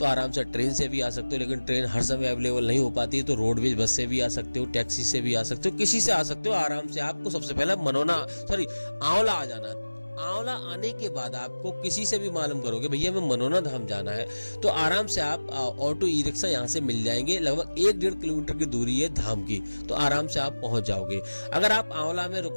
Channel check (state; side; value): inverted; both; correlation -1.00